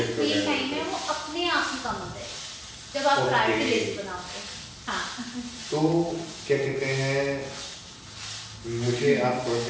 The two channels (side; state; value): both; identical; correlation 1.00